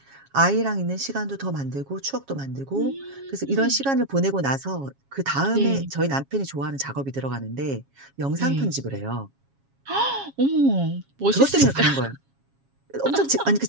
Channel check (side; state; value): left; late; 7.3 ms